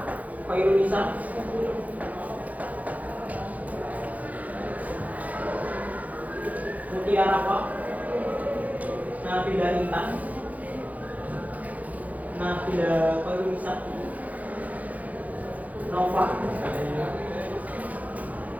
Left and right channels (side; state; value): left; late; 0.076 ms